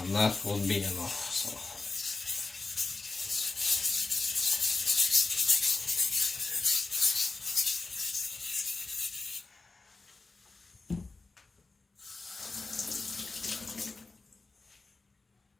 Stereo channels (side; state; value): right; quieter; 3.7 dB